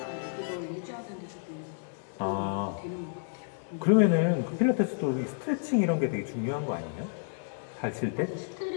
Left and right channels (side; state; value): right; silent; 57 dB below the other